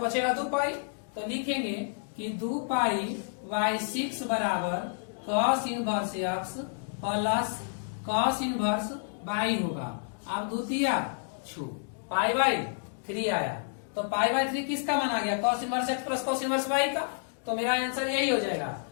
बचेगा 2 पाई। तो लिखेंगे कि 2 पाई बाई 6 बराबर cos inverse x plus cos inverse by होगा। अब द्वितीय छू पाई बाई 3 आया, तो पाई बाई 3 किसका मान आ गया? Cos inverse x plus cos inverse by का। तो मेरा आंसर यही हो जाएगा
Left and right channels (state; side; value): silent; right; digital silence